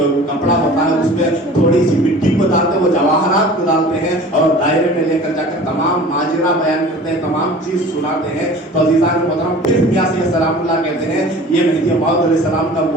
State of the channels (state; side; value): normal; both; correlation 0.43